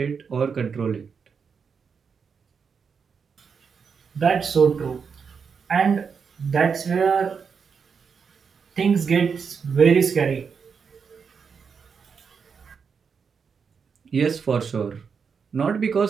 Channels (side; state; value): left; quieter; 6.0 dB